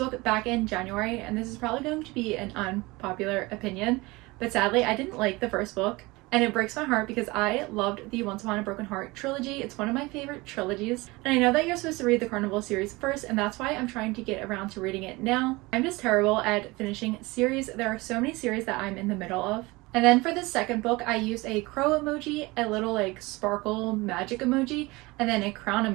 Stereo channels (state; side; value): quieter; left; 22.8 dB